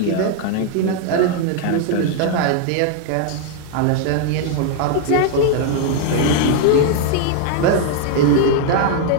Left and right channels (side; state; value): both; different; correlation 0.00